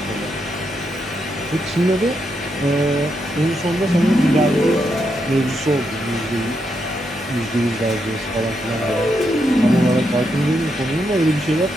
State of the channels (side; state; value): both; normal; correlation 0.81